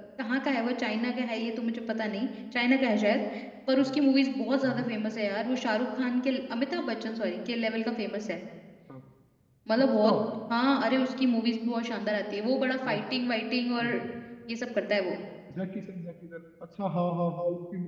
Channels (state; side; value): identical; both; correlation 1.00